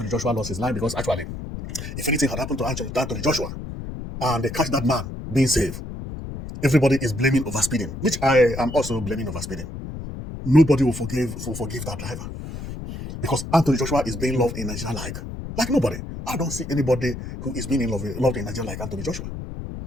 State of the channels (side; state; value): left; noise; rumble, 8 dB below the sound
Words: Joshua lost his life, because actually, if anything had happened to Anthony Joshua, and they catch that man being safe, everybody is blaming overspeeding, which I am also blaming overspeeding. Nobody will forgive that driver, because Anthony Joshua is being loved in Nigeria like nobody. I don't see anybody who is being loved in Nigeria like Anthony Joshua.